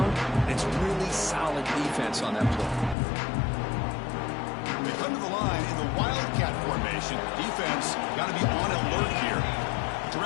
and it's really solid defense on that play. They come to the line in the Wildcat formation. Defense got to be on alert here.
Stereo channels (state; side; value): drops out; right; at 3.0 s